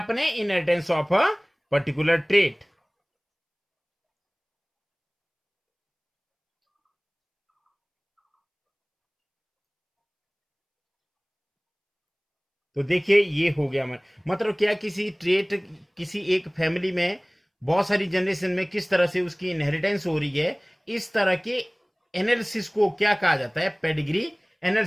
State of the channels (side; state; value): both; identical; correlation 1.00